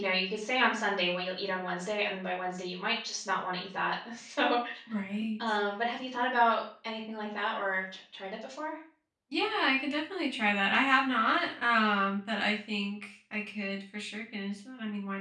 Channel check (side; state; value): both; identical; correlation 1.00